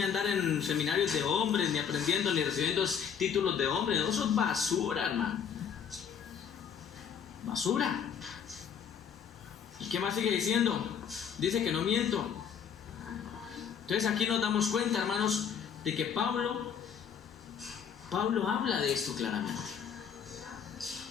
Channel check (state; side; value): quieter; right; 7.5 dB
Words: a andar en seminarios de hombres, ni aprendiendo, ni recibiendo títulos de hombres. Eso es basura, hermano. Basura. ¿Y qué más sigue diciendo? Dice que no miento. Entonces aquí nos damos cuenta, hermanos, de que Pablo habla de esto claramente.